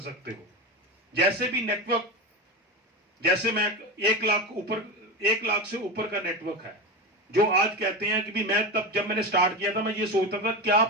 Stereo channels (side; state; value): both; normal; correlation 0.21